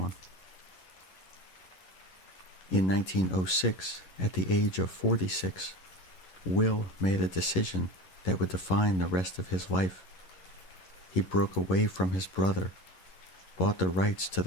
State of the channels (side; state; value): right; late; 11 ms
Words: In 1906, at the age of 46, Will made a decision that would define the rest of his life. He broke away from his brother, bought the rights to